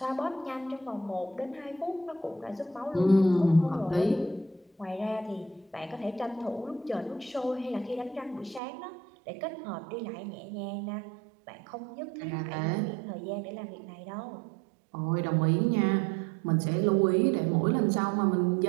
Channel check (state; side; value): drops out; left; at 8.6 s